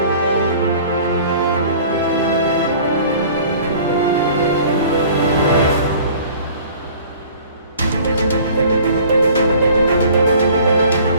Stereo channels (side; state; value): both; inverted; correlation -0.48